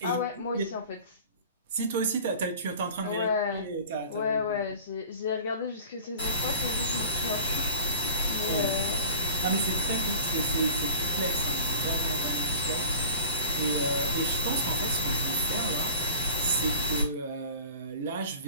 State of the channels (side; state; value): both; inverted; correlation -0.42